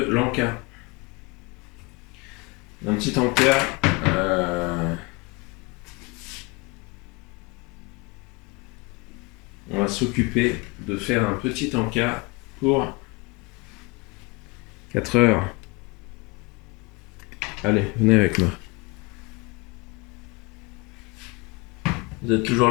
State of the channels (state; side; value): quieter; right; 26.2 dB